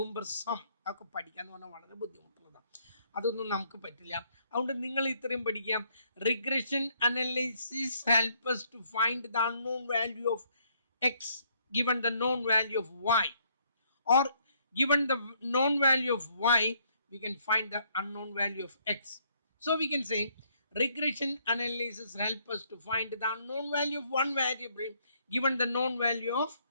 ഒക്കെ പഠിക്കുക എന്ന് പറഞ്ഞാൽ വളരെ ബുദ്ധിമുട്ടുള്ളതാണ്. അതൊന്നും നമുക്ക് പറ്റില്ല. അതുകൊണ്ട് നിങ്ങൾ ഇത്രയും പഠിക്കാം. Regression analysis help us to find the unknown value of x given the known value of y, or given the known value of y we can find the unknown value of x. So we can say regression analysis help us to find the unknown value of one variable given the known value of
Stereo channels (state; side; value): inverted; both; correlation -0.68